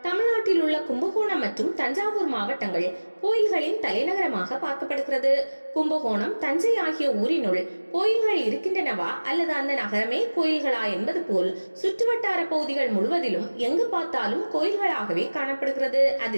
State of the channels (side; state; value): both; inverted; correlation -1.00